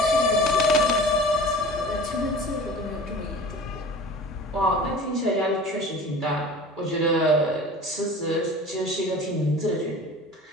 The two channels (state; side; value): normal; both; correlation 0.40